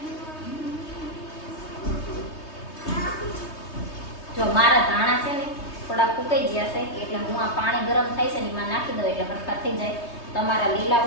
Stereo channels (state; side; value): late; right; 3.2 ms